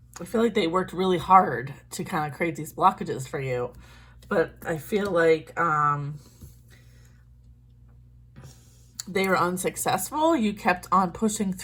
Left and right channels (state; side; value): identical; both; correlation 1.00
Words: I feel like they worked really hard to kind of create these blockages for you. But I feel like they were unsuccessful. You kept on pushing